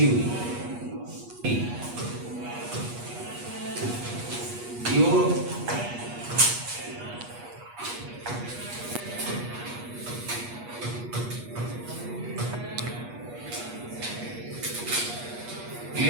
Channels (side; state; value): left; late; 8.3 ms